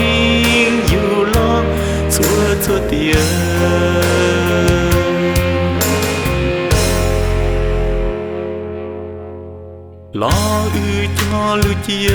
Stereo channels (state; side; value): identical; both; correlation 1.00